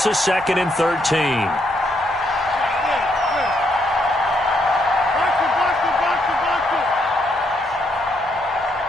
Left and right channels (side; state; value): both; normal; correlation 0.75